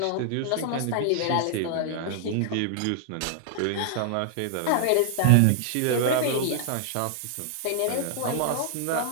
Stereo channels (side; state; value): both; different; correlation 0.00